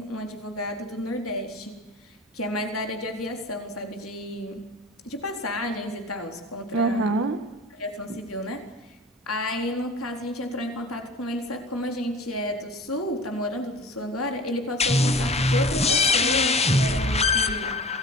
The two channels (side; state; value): both; normal; correlation 0.38